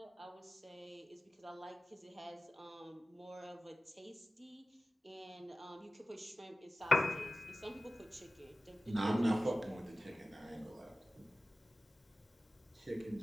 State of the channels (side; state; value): both; normal; correlation 0.96